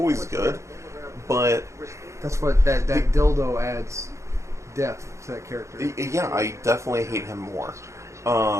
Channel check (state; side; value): late; left; 0.14 ms